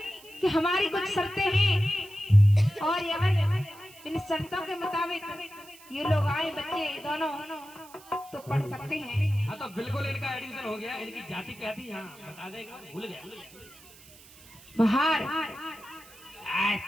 कि हमारी कुछ शर्तें हैं और इन शर्तों के मुताबिक ये लोग आए बच्चे दोनों तो पढ़ सकते हैं। हाँ तो बिल्कुल इनका एडमिशन हो गया। इनकी जाति क्या थी? हाँ बता देगा, भूल गया। बाहर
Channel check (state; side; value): noise; right; hiss, 22 dB below the sound